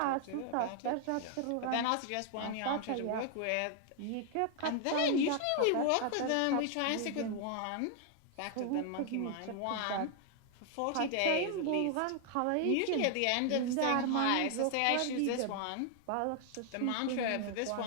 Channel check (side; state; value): both; different; correlation 0.00